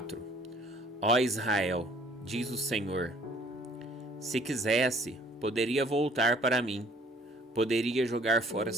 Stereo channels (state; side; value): normal; both; correlation 0.57